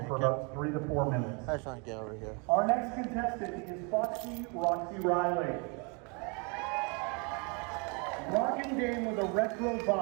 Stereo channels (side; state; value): left; quieter; 33.8 dB